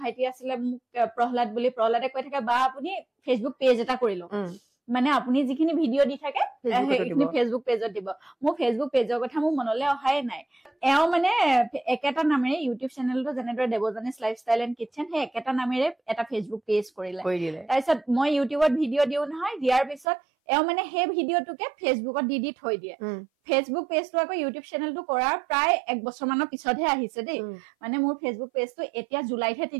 আছিলে মোক প্ৰহ্লাদে কৈ থাকে বা আপুনি ফেচবুক পেজ এটা কৰি লওক মানে আপুনি যিখিনি ভিডিঅ' দি থাকে সেইখিনি ফেচবুক পেজত দিব মোৰ ফেচবুক পেজৰ কথা মোৰ মনলৈ অহাই নাই এওঁ মানে একেটা নামেৰে ইউটিউব চেনেলটো যেনেদৰে দেৱজানীজ লাইফষ্টাইল এণ্ড কিটচেন সেই একেটা নামেৰে এটা ফেচবুক পেজ কৰিলে তাৰপিছত মই ইউটিউবত ভিডিঅ' দিওঁ নহয় দিয়াৰ পিছত এওঁ মানে সেই ভিডিঅ'টোকে ফেচবুকত দি থৈ দিয়ে ফেচবুক পেজটো আকৌ ইউটিউব চেনেলটো কৰাৰ প্ৰায় 1 বছৰ মানৰ পিছতহে আহিছে দেই মানে মোৰ ফেচবুক পেজটো এতিয়া জুলাইতহে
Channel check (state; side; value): drops out; left; at 20.1 s